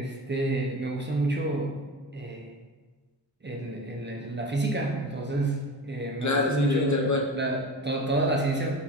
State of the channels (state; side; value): normal; both; correlation 0.30